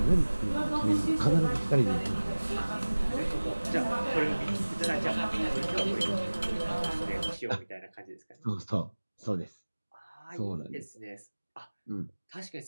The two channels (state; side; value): inverted; both; correlation -1.00